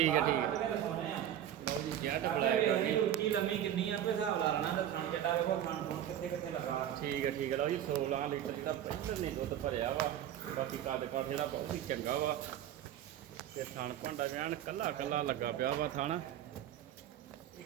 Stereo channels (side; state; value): left; quieter; 11.0 dB